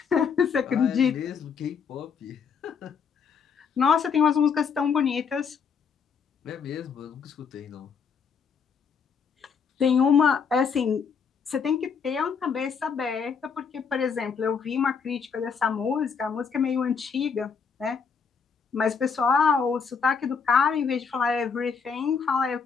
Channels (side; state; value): right; quieter; 6.1 dB